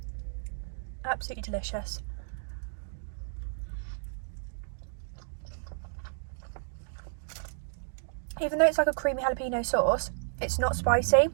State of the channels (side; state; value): left; silent; digital silence